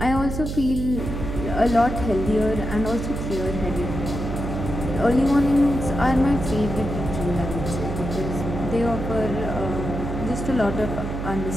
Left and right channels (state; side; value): noise; right; hum, 5 dB below the sound